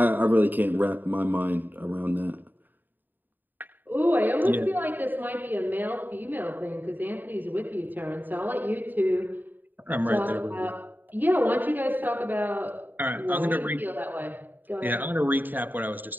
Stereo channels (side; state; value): left; late; 0.090 ms